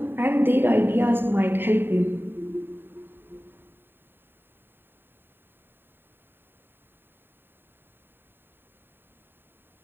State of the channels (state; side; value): late; left; 0.099 ms